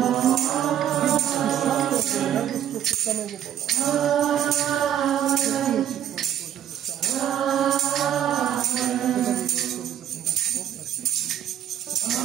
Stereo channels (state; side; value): quieter; left; 10.4 dB